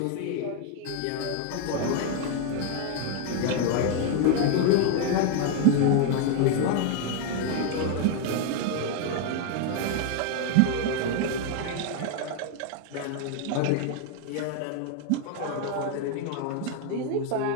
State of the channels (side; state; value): both; different; correlation 0.01